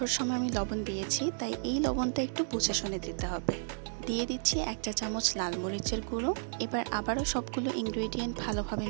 সময় আমি লবণ দিয়েছি তাই এই লবণটা একটু বুঝে শুনে দিতে হবে। দিয়ে দিচ্ছি 1 চা চামচ লাল মরিচের গুঁড়ো। এবার আবারও সবগুলো ইনগ্রেডিয়েন্ট ভালোভাবে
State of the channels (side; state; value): left; silent; digital silence